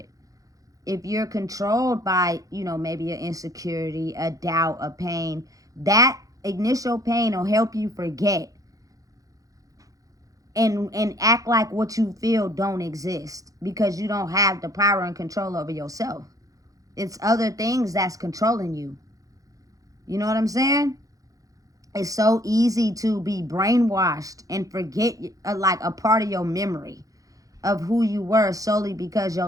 If you're controlled by, maybe an insecurity, a doubt, a pain, that initial pain will help you forget and act like what you feel don't exist because you don't have the power and control over yourself. It's other things that's controlling you. You know what I'm saying? It's so easy to be brainwashed and forget like a part of your memory of who you were solely because your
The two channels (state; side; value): late; left; 0.17 ms